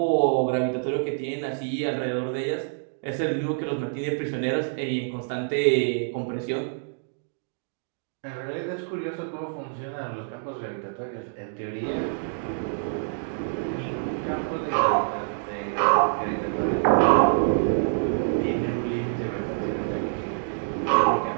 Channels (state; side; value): silent; left; digital silence